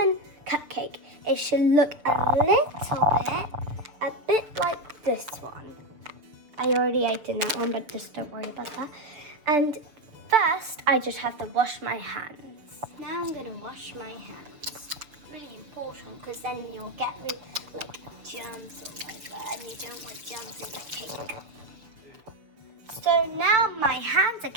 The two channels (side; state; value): left; late; 6.8 ms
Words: cupcake. It should look a bit like this one. I already ate in that one, but just don't worry about that. And first, I just have to wash my hands. Now I'm gonna wash my hands. Really important, because then you'll get like germs or whatever, and you don't want germs in the cake. So now my hands are